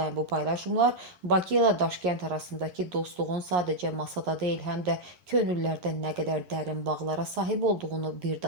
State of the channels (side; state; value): left; late; 11 ms